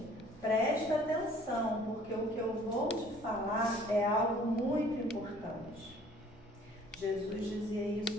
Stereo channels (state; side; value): normal; both; correlation 0.55